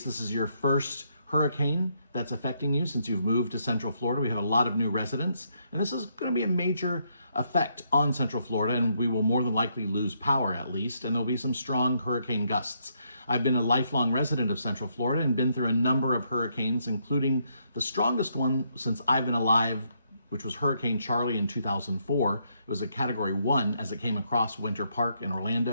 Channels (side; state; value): both; inverted; correlation -0.75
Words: this is your first hurricane that's affecting you since you've moved to Central Florida. We have a lot of new residents, and this is going to be a major effect on Central Florida, and we will more than likely lose power at least, and there'll be some strong hurricane gusts. I've been a lifelong resident of Central Florida and been through a number of hurricanes, including the strongest one since I've been alive, which was Hurricane Charlie in 2004. It was a Category 1 as it came across Winter Park in